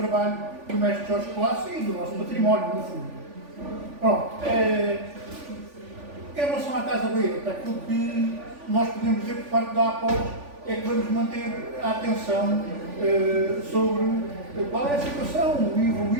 do mestre Jorge Colasso e do nosso património, no fundo. Pronto. Em relação à Casa Baeta, aquilo que nós podemos dizer por parte da APOS é que vamos manter a atenção sobre qual é a situação, o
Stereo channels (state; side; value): late; left; 3.5 ms